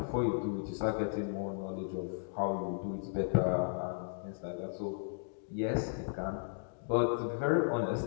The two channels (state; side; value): silent; right; digital silence